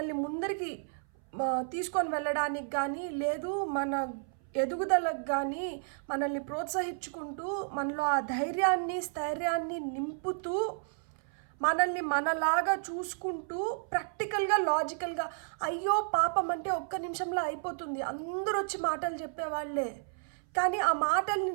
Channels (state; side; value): silent; left; 56 dB below the other